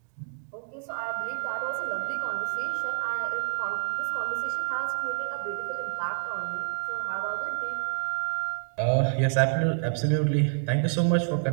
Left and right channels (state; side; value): silent; left; digital silence